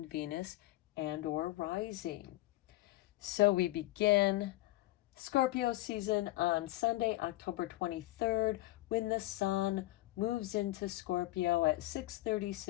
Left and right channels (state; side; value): quieter; right; 17.5 dB